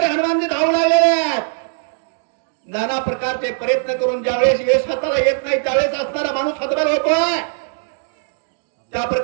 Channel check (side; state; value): left; silent; digital silence